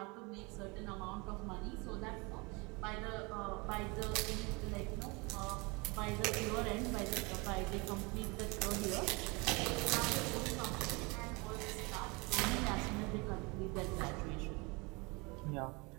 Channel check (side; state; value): left; quieter; 27.6 dB